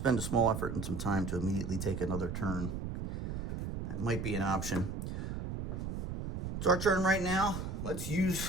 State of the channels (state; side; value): noise; right; rumble, 4 dB below the sound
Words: a small effort and some time to immediately take another turn. That might be an option. It's our turn right now. Let's